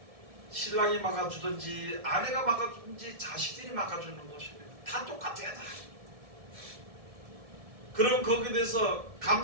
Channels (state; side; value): late; left; 1.7 ms